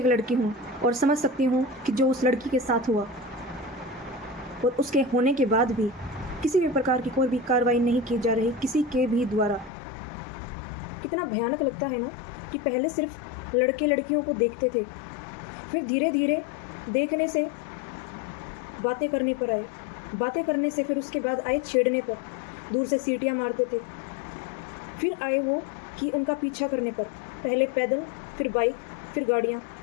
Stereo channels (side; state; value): right; drops out; at 9.7 s